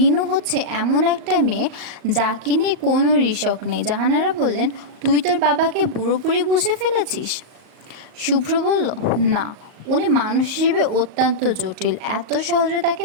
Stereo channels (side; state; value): left; late; 38 ms